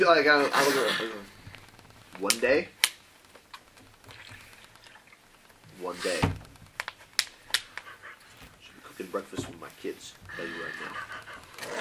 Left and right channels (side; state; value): both; identical; correlation 1.00